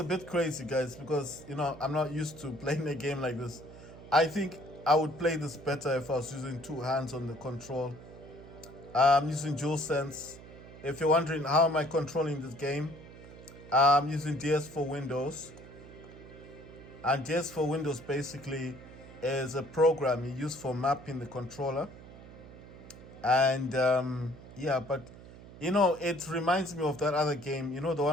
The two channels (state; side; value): noise; right; hum, 17 dB below the sound